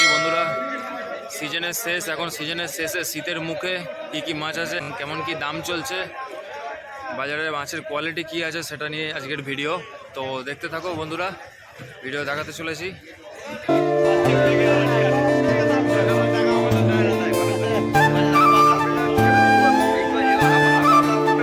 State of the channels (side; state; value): both; identical; correlation 1.00